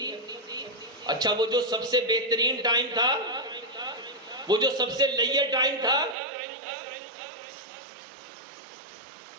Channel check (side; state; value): left; drops out; at 6.2 s